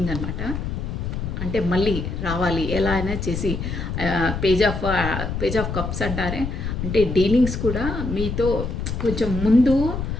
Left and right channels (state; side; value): noise; left; rumble, 4 dB below the sound